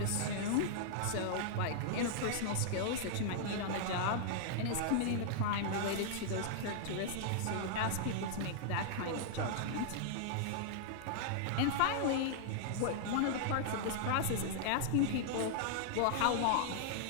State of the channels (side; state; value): both; different; correlation -0.01